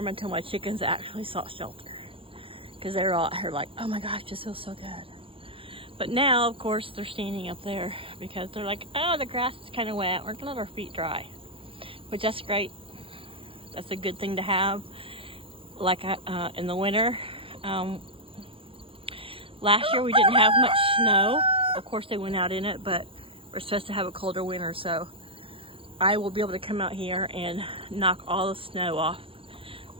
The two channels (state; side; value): late; left; 0.26 ms